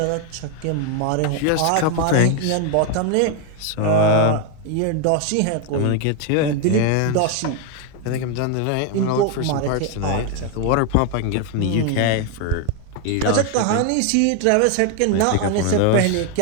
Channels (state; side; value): different; both; correlation 0.01